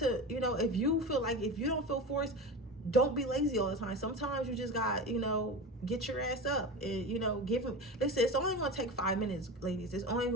you know, if you feel like, if you don't feel forced, don't be lazy all the time. Sometimes you just got, you know, get your ass up and, you know, give him, listen, it's only going to take 5 minutes, ladies. It's only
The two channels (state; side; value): normal; both; correlation 0.27